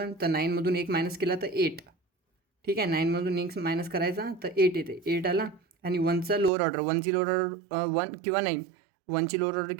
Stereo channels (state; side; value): drops out; left; at 6.5 s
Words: तर 9मधून 1 मायनस केला तर 8. ठीक आहे, 9मधून 1 मायनस करायचा तर 8 येते. 8 आला आणि वनचा लोअर ऑर्डर, वनची लोअर ऑर्डर 1 किंवा 9. वनची लोअर ऑर्डर